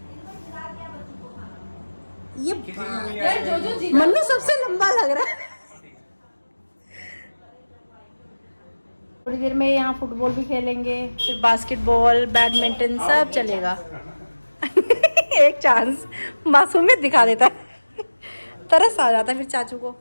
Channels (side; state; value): both; inverted; correlation -1.00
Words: ये मन्नू सबसे लंबा लग रहा है। थोड़ी देर में यहाँ फुटबॉल भी खेलेंगे, फिर बास्केटबॉल, बैडमिंटन सब चलेगा। एक चांस मासूमियत दिखा देता है, तरस आ जाता है फिर चाचू को।